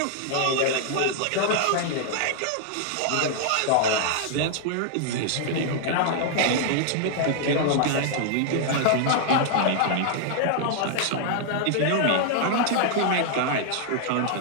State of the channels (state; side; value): different; both; correlation -0.01